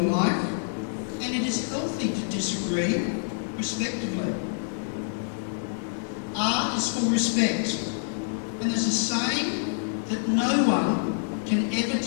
life, and it is healthy to disagree respectively. R is for respect, and there's a saying that no one can ever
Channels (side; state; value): right; silent; 60 dB below the other